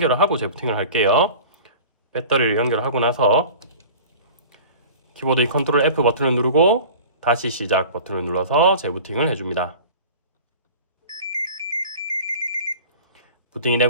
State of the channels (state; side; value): inverted; both; correlation -0.39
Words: 하고 재부팅을 할게요. 배터리를 연결하고 나서 키보드의 컨트롤 F 버튼을 누르고 다시 시작 버튼을 눌러서 재부팅을 해줍니다. 부팅이